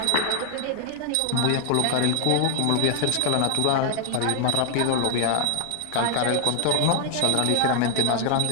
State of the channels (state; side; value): different; both; correlation 0.00